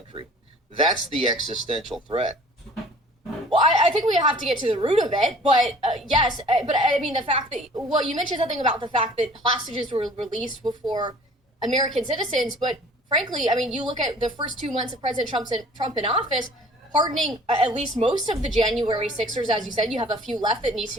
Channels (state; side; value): normal; both; correlation 0.50